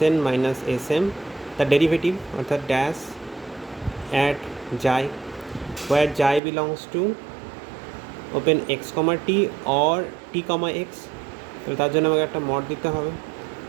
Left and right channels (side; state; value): left; drops out; at 6.4 s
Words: minus Sm the derivative অর্থাৎ dash at xi where xi belongs to open x, t or t, x, তাহলে তার জন্য আমাকে একটা mod দিতে হবে।